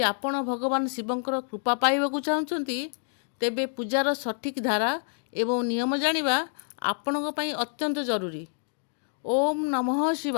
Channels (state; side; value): silent; right; digital silence